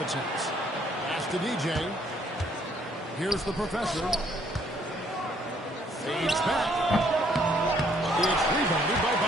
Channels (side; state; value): both; normal; correlation 0.66